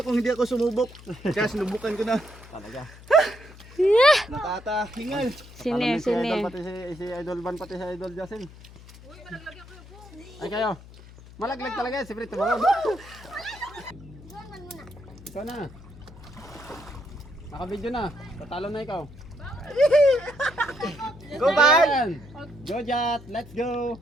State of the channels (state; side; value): noise; left; hum, 19 dB below the sound